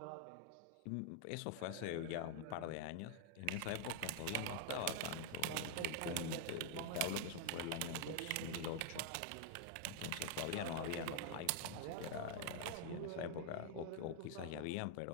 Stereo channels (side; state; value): both; different; correlation 0.00